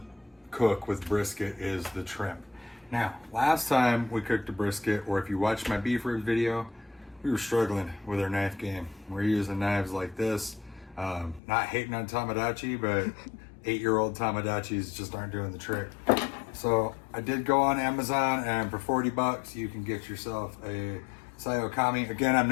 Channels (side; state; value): right; drops out; at 11.4 s